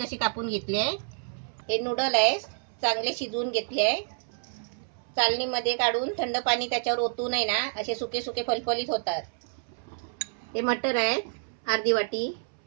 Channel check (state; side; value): silent; left; 59 dB below the other